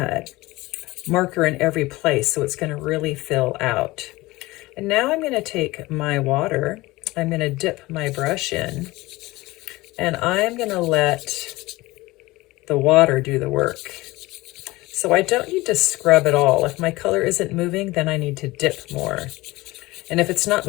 marker in every place, so it's going to really fill out. And now I'm going to take my water, I'm going to dip my brush in, and I'm going to let the water do the work. So I don't need to scrub at all. If my color isn't moving, then I need to dip more. And if it's not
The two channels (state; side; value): quieter; right; 20.3 dB